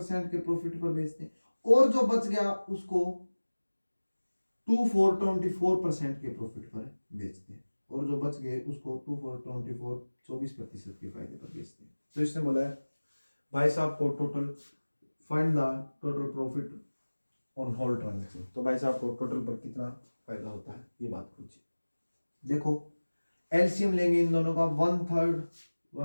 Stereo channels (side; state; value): both; inverted; correlation -1.00